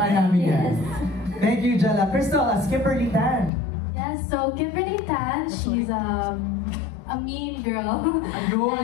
namin yan. Yes. Thank you, Jella. Crystal, as Kimberly Tan. Yes, so Kimberly Tan, she's a mean girl. Ayun,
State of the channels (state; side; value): drops out; right; at 3.5 s